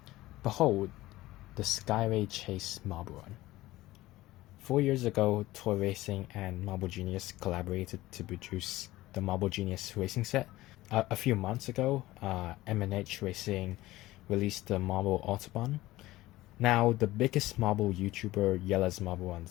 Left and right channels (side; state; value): right; quieter; 17.4 dB